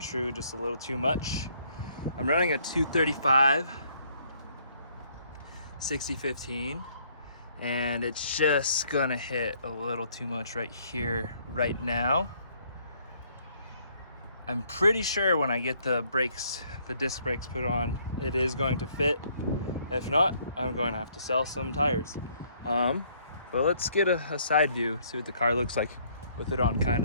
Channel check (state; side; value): inverted; both; correlation -0.65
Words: just a little too much. I'm running a 235 60/15 and it's just gonna hit a little too much right here right now. I'm pretty sure when I get the brakes, the disc brakes put on, it is going to fit. If not, I'm going to have to sell some tires. But let's get a side view, see what the car looks like with it on,